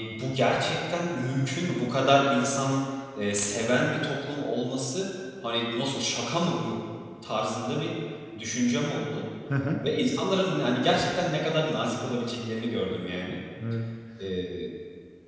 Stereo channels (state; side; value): identical; both; correlation 1.00